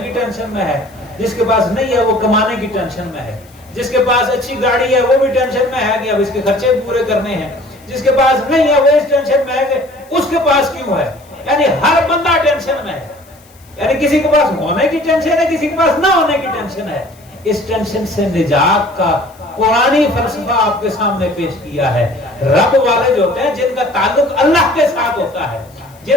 کی ٹینشن میں ہے, جس کے پاس نہیں ہے وہ کمانے کی ٹینشن میں ہے, جس کے پاس اچھی گاڑی ہے وہ بھی ٹینشن میں ہے کہ اب اس کے خرچے پورے کرنے ہیں, جس کے پاس نہیں ہے وہ اس ٹینشن میں ہے کہ اس کے پاس کیوں ہے. یعنی ہر بندہ ٹینشن میں ہے, یعنی کسی کے پاس ہونے کی ٹینشن ہے, کسی کے پاس نہ ہونے کی ٹینشن ہے. اس ٹینشن سے نجات کا قرآنی فلسفہ آپ کے سامنے پیش کیا ہے۔ رب والے جو ہوتے ہیں جن کا تعلق اللہ کے ساتھ ہوتا ہے،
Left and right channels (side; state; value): left; noise; hiss, 28 dB below the sound